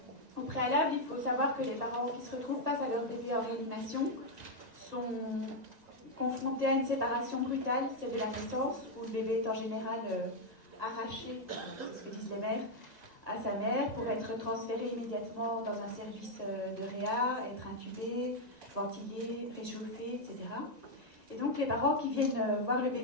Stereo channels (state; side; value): late; left; 1.9 ms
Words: au préalable, il faut savoir que les parents qui se retrouvent face à leur bébé en réanimation sont confrontés à une séparation brutale, celle de la naissance, où le bébé est en général arraché, c'est ce que disent les mères, à sa mère pour être transféré immédiatement dans un service de réa, être intubé, ventilé, réchauffé, etc. Et donc les parents qui viennent voir le